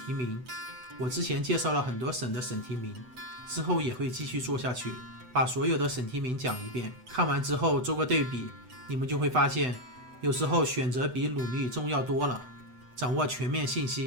提名，我之前介绍了很多省的省提名，之后也会继续做下去，把所有的省提名讲一遍，看完之后做个对比，你们就会发现有时候选择比努力重要多了。掌握全面信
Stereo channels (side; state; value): left; late; 8.0 ms